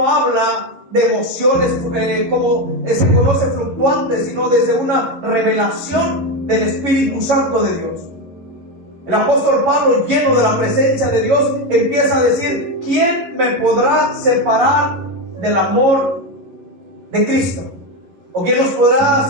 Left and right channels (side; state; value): left; late; 11 ms